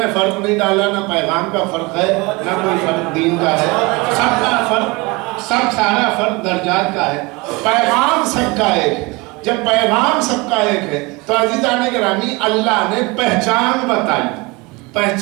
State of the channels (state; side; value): quieter; left; 25.3 dB